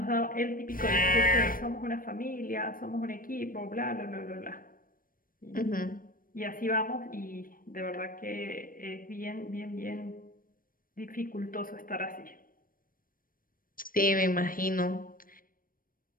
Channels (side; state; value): right; late; 0.41 ms